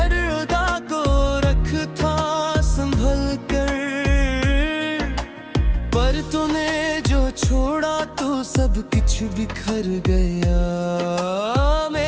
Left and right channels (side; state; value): both; identical; correlation 1.00